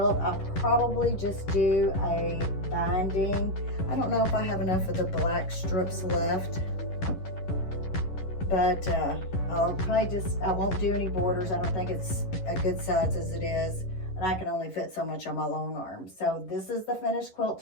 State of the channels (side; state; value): right; late; 11 ms